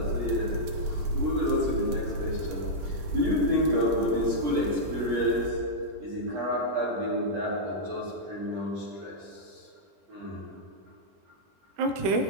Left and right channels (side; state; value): left; late; 21 ms